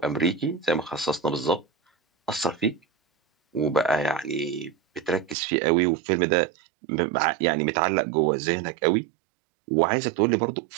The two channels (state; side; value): drops out; left; at 5.4 s